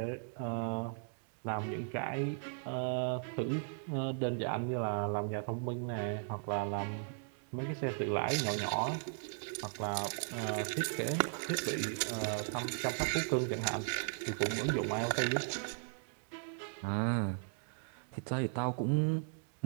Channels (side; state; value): left; silent; digital silence